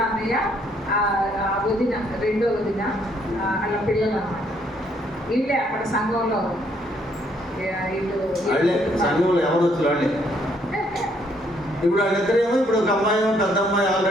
అన్నయ్య వదిన, 2వ వదిన వాళ్ళ పిల్లలు అన్నమాట. వీళ్ళే అక్కడ సంఘంలో సంఘంలో ఎవరు వచ్చి వాళ్ళే. ఇప్పుడు వాళ్ళిద్దరేమో, ఇప్పుడు ఒక అమ్మాయి, పెద్ద అమ్మాయి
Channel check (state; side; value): normal; both; correlation 0.68